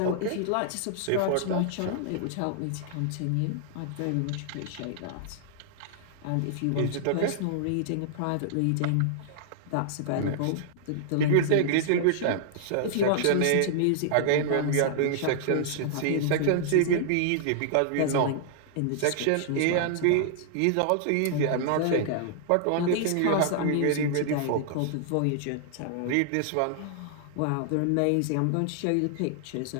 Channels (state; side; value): different; both; correlation -0.01